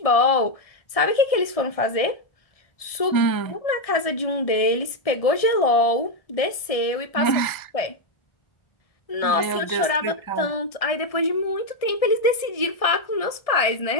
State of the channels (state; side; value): late; right; 1.7 ms